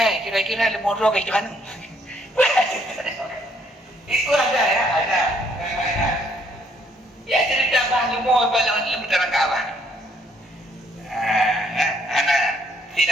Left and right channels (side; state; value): both; normal; correlation 0.67